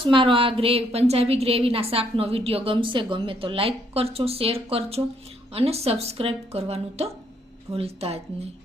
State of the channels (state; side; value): normal; both; correlation 0.70